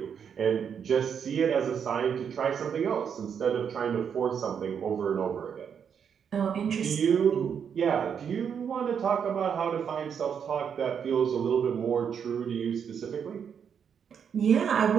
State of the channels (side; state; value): left; quieter; 7.5 dB